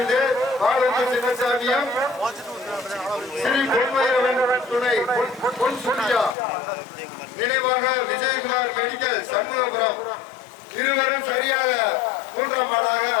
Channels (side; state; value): right; drops out; at 6.4 s